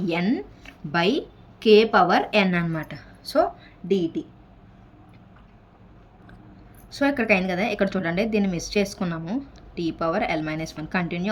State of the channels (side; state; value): both; identical; correlation 1.00